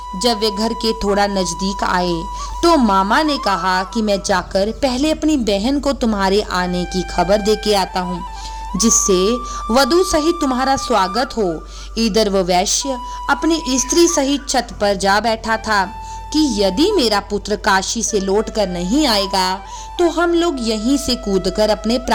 जब वे घर के थोड़ा नजदीक आए तो मामा ने कहा कि मैं जाकर पहले अपनी बहन को तुम्हारे आने की खबर दे के आता हूँ, जिससे वधू सहित तुम्हारा स्वागत हो। इधर वह वैश्य अपनी स्त्री सहित छत पर जा बैठा था कि यदि मेरा पुत्र काशी से लौट कर नहीं आएगा तो हम लोग यहीं से कूदकर अपने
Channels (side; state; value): both; identical; correlation 1.00